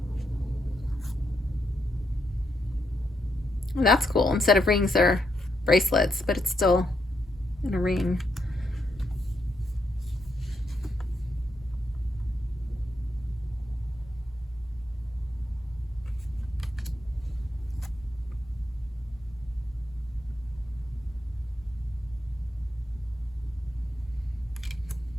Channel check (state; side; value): normal; both; correlation 0.80